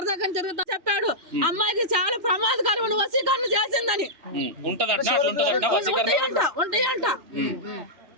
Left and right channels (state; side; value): late; left; 3.0 ms